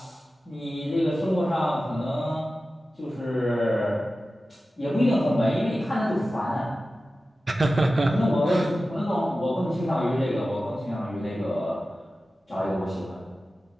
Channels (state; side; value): normal; both; correlation 0.94